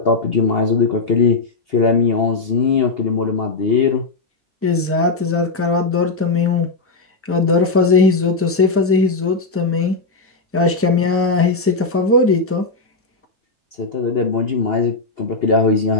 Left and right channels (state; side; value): quieter; right; 3.7 dB